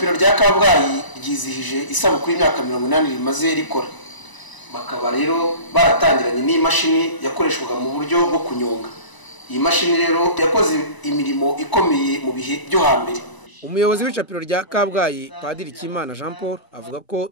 rya Kabgayi ryizihije isabukuru y'imyaka 80 rimaze rikora. Bakaba rero baratangiranye n'imashini yakoreshwaga mu buryo bwo kunyonga. Iyi mashini rero yakoze imirimo ikomeye mu bihe byo hambere. Umuyobozi w'icapiro rya Kabgayi Padiri Kimana Jean Paul avuga ko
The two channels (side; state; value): right; late; 1.0 ms